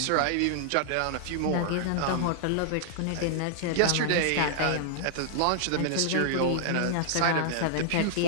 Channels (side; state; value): both; different; correlation -0.01